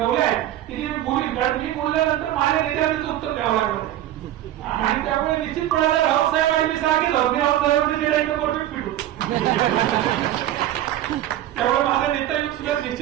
आहेत की ती बोलीन, कारण मी बोलल्यानंतर माझ्या नेत्याला उत्तर द्यावं लागलं. आणि त्यामुळे निश्चितपणाने राऊतसाहेब आणि मी सांगितलं परफेक्ट फिट होतो. त्यामुळे माझा नेता युग सुद्धा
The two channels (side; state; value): left; quieter; 13.0 dB